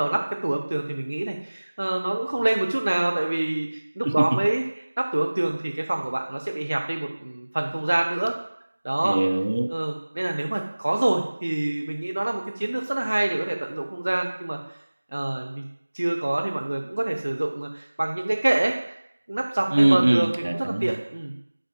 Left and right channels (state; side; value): inverted; both; correlation -1.00